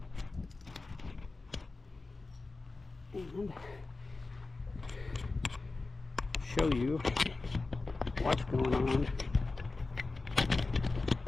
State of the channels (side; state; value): right; quieter; 3.6 dB